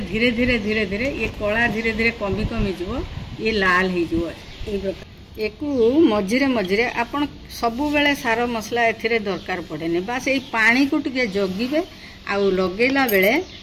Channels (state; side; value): identical; both; correlation 1.00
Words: धीरे धीरे धीरे ये कला धीरे धीरे कमी कमी जीव ये लाल हो मझिरे मझिरे आपन सबु बेले सार मसला एथिरे दरकार पड़ेनी बास ये पानी को टिके जगिबे आउ लगेला बेले